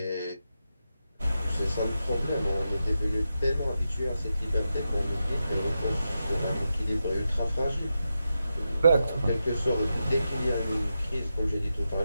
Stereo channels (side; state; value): both; inverted; correlation -0.89